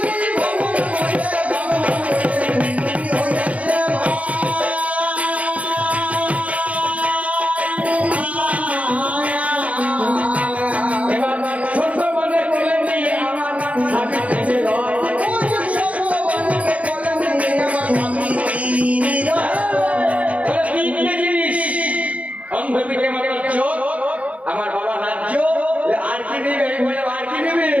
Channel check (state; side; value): late; left; 0.066 ms